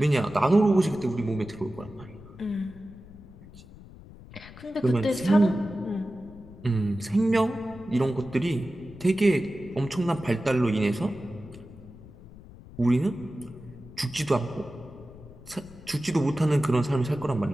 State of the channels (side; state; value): left; noise; rumble, 19 dB below the sound